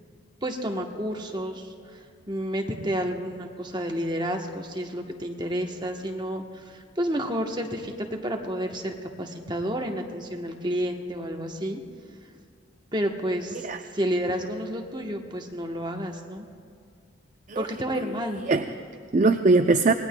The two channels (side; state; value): both; normal; correlation 0.55